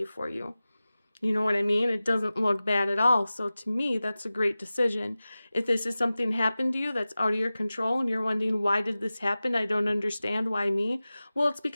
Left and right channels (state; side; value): inverted; both; correlation -0.97